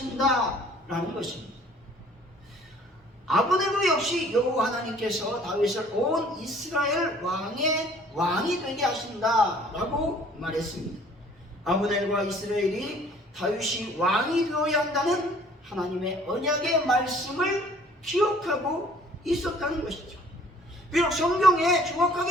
것입니다. 아브넬도 역시 여호와 하나님께서 다윗을 온 이스라엘 왕이 되게 하신다라고 말했습니다. 아브넬과 이스라엘이 다윗이 왕이 되어야 한다는 하나님의 언약의 말씀을 기억하고 있었다는 것이죠. 비록 성경에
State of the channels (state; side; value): normal; both; correlation 0.55